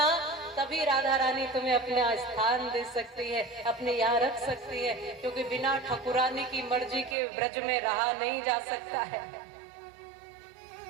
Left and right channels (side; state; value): left; drops out; at 7.2 s